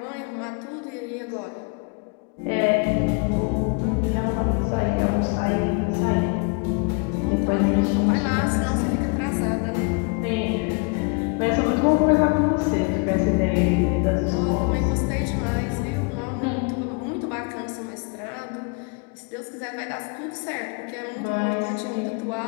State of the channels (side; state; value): right; quieter; 34.0 dB